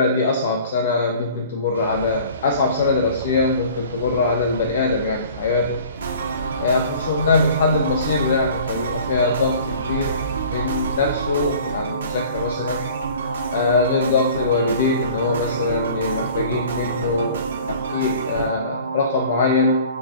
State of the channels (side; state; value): both; inverted; correlation -0.47